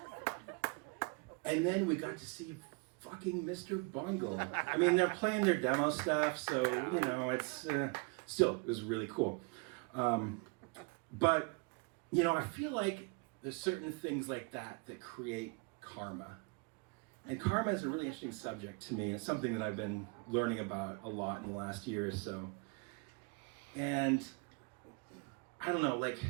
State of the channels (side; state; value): left; quieter; 31.6 dB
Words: And then we got to see fucking Mr. Bungle. I mean, they're playing their demo stuff, so, it's still, it was really cool. But, I feel like there's certain things like that create karma. And karma is a really interesting subject to me. It's something that I've been learning about a lot in the last year or so. And I don't know,